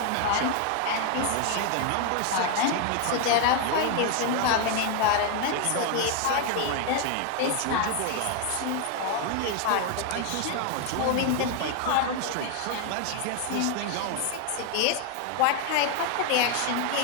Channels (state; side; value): different; both; correlation 0.01